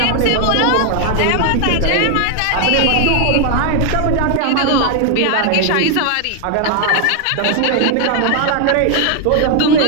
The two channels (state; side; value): different; both; correlation 0.00